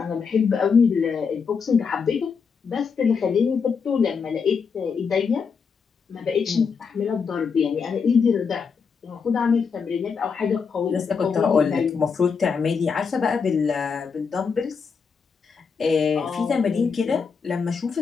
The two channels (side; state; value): right; quieter; 5.7 dB